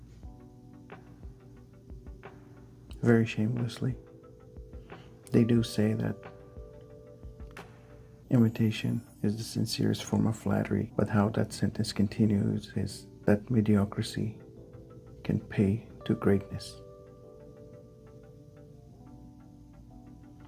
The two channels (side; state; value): both; identical; correlation 1.00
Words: very shamelessly. They do say that imitation is the sincerest form of flattery, but how that sentence continues is that mediocrity can pay to greatness.